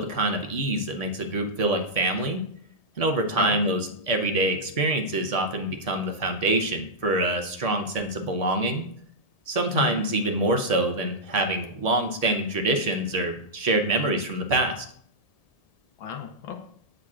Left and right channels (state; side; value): late; right; 1.7 ms